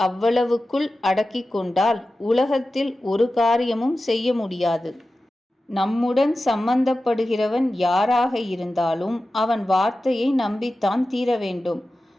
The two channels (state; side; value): normal; both; correlation 0.94